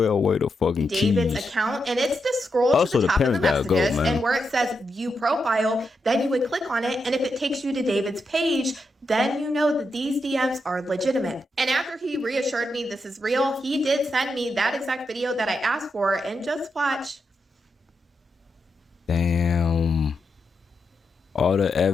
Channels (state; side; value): normal; both; correlation 0.85